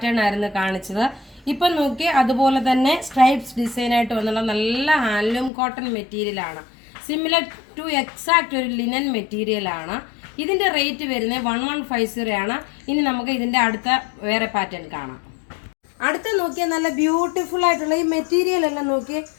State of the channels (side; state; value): right; drops out; at 5.5 s